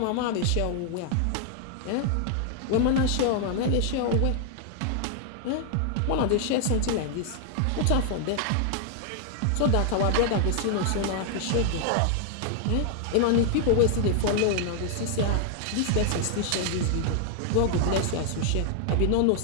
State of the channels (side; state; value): both; different; correlation 0.00